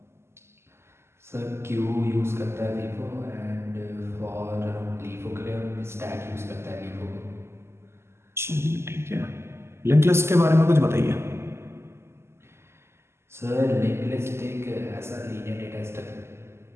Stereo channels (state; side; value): late; left; 0.12 ms